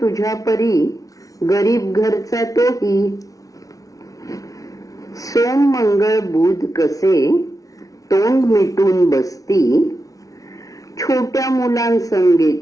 तुझ्या परी गरीब घरचा तोही. सोम मंगळ बुध कसे तोंड मिटून बसती, छोट्या मुलांसंगे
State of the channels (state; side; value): late; right; 0.17 ms